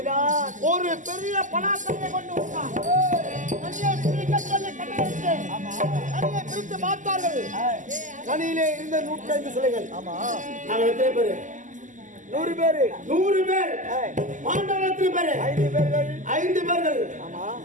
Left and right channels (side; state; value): left; late; 0.37 ms